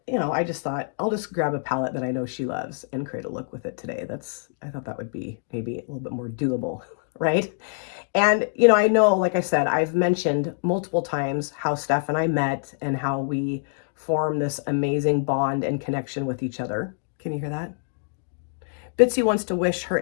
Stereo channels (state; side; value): silent; right; digital silence